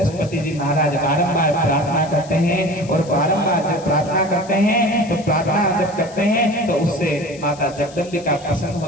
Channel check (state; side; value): noise; left; hiss, 20 dB below the sound